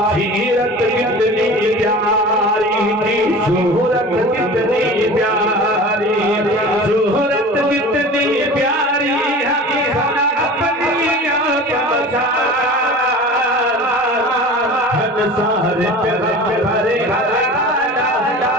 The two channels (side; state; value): both; normal; correlation 0.37